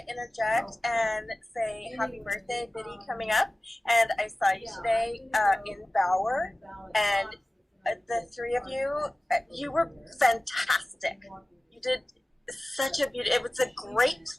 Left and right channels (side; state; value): both; normal; correlation 0.97